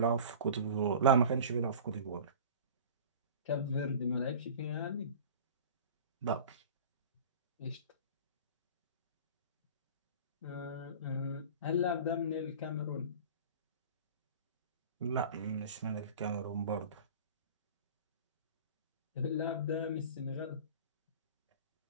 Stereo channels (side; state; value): both; inverted; correlation -0.38